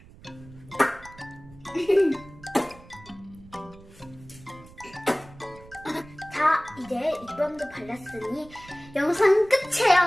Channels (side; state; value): right; noise; rumble, 22 dB below the sound